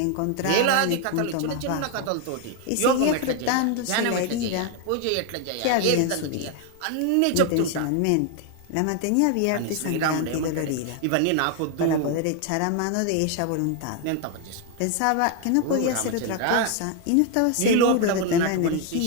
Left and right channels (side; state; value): both; different; correlation 0.01